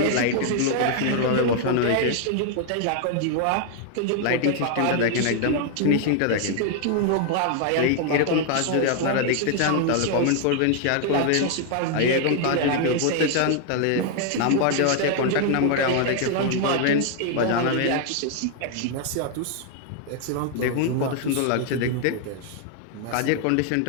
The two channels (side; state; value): both; different; correlation 0.00